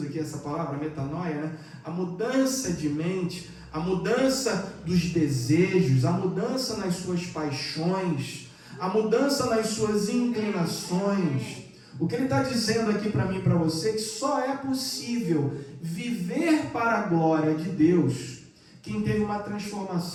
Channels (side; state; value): both; identical; correlation 1.00